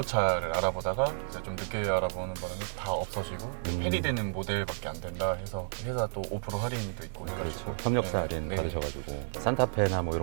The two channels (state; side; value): silent; left; 57 dB below the other